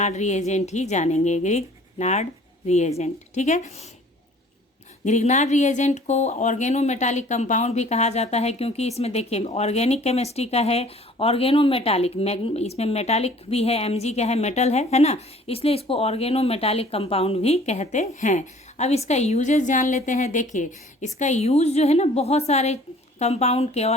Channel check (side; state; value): both; normal; correlation 0.52